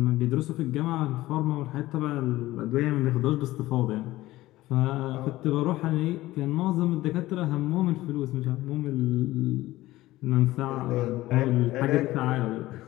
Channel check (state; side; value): quieter; right; 17.0 dB